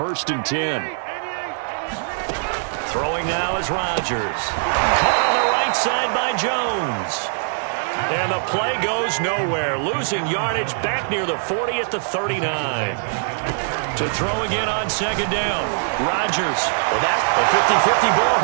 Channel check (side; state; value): left; silent; 64 dB below the other